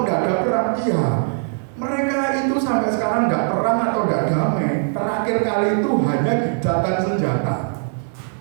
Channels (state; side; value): silent; left; digital silence